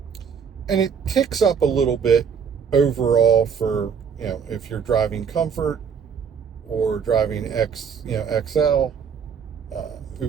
And it ticks up a little bit overall for, if you're driving Comfort or driving XL,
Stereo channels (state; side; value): quieter; left; 6.8 dB